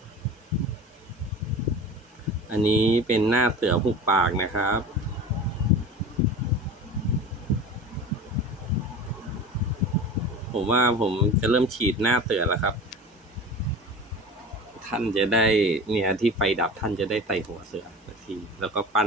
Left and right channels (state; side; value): normal; both; correlation 0.35